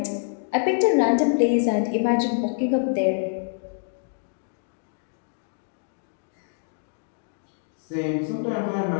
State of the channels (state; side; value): silent; right; digital silence